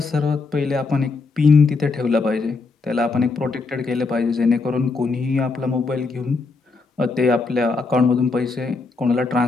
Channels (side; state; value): right; quieter; 4.1 dB